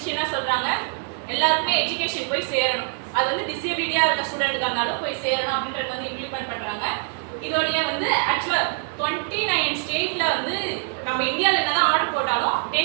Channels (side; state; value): left; silent; 57 dB below the other